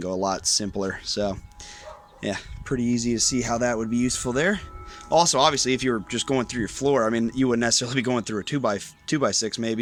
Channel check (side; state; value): both; identical; correlation 1.00